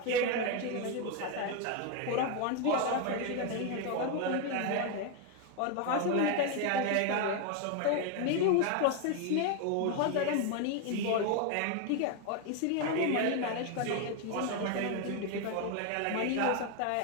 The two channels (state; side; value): different; both; correlation 0.01